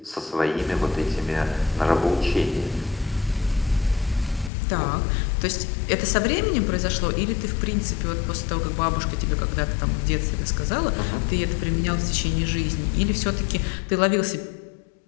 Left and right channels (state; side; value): drops out; right; at 4.5 s